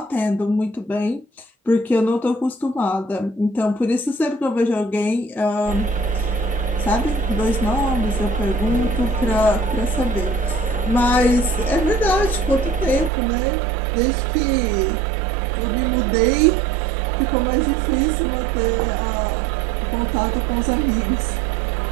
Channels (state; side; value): drops out; left; at 13.1 s